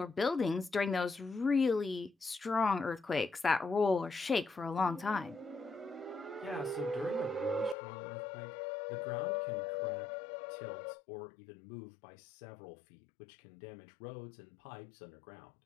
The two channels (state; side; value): drops out; right; at 7.8 s